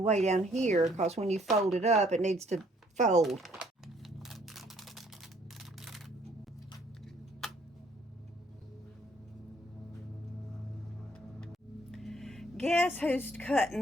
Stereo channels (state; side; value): normal; both; correlation 0.63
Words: way down here, because when you fold it up, it needs to fold. Guess who's